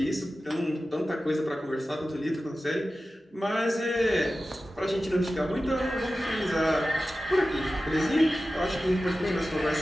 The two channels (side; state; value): both; normal; correlation 0.94